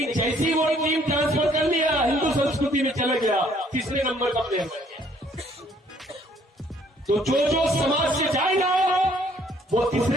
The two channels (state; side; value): normal; both; correlation 0.62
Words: जैसी वो टीम ट्रांसफर कर लिया, हिंदू संस्कृति में चला गया, तीसरे नंबर का प्लेयर बन गया। तो जो समाज से जाएगा वो तीसरे